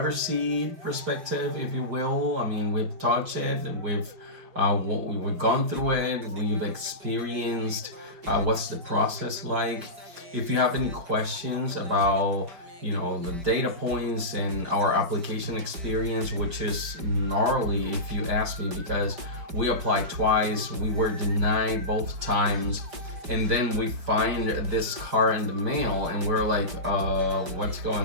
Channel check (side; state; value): left; late; 5.3 ms